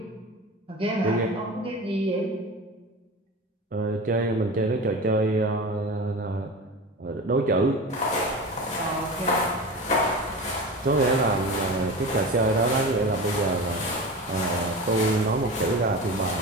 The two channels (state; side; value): normal; both; correlation 0.29